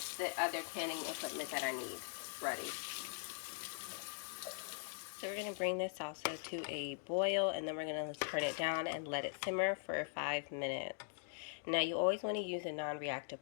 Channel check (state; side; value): silent; right; digital silence